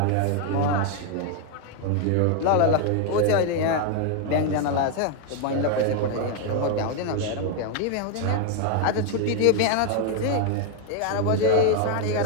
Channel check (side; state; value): both; different; correlation 0.00